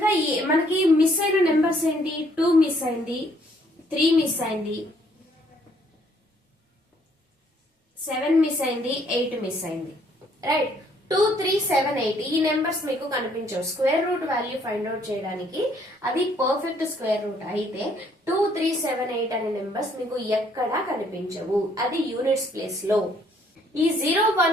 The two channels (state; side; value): normal; both; correlation 0.65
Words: మనకి మిస్ అయిన నెంబర్స్ ఏంటి? 2 మిస్ అయింది, 3 మిస్ అయింది, 7 మిస్ అయింది, 8 మిస్ అయింది. రైట్, 2, 3, 7, 8 ఈ నెంబర్స్ మీకు కనిపించవు. Square root value find out చేయడానికి అది పర్ఫెక్ట్ స్క్వేర్ రూట్ అయితే 2, 3, 7, 8 అనే నెంబర్స్ మీకు ఎక్కడా కనిపించవు, అది యూనిట్స్ ప్లేస్ లో. ఈ 0,